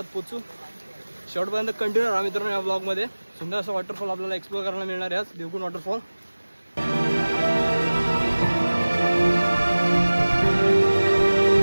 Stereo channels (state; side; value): inverted; both; correlation -1.00